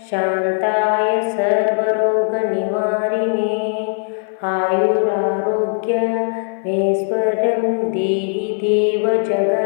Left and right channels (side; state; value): right; silent; 58 dB below the other